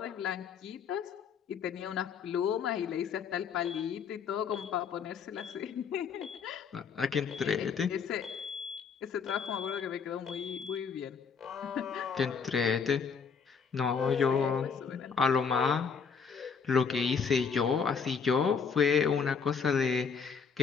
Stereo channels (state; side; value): quieter; right; 6.1 dB